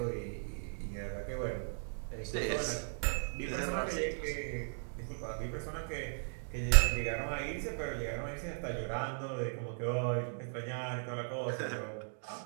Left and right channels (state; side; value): silent; left; digital silence